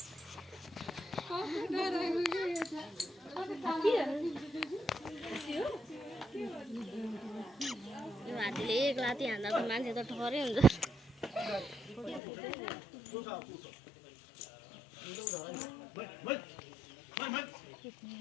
यो हात्तीले एक लाती हान्दा त मान्छे त ठहरै हुन्छ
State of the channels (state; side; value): drops out; right; at 12.2 s